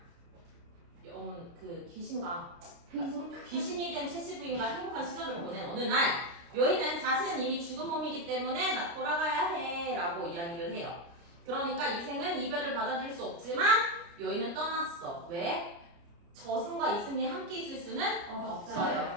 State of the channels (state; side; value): late; left; 29 ms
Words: 그 귀신이 된 최씨 부인과 행복한 시절을 보낸 어느 날 여인은 자신은 이미 죽은 몸이기 때문에 나 돌아가야 해 라고 이야기를 해요. 그러니까 이생은 이별을 받아들일 수 없지만 여인은 떠났어. 왜? 저승과 이승이 함께 있을 수는